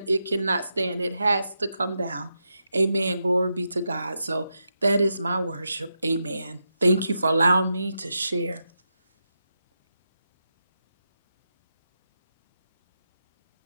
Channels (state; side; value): inverted; both; correlation -0.86